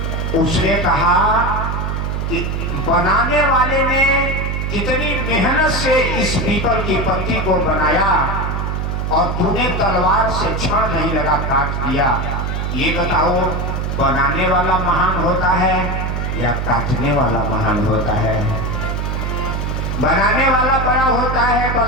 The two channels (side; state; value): right; noise; hum, 2 dB below the sound